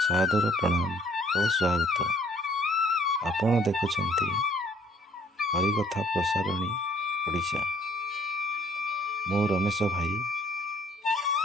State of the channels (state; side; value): normal; both; correlation 0.60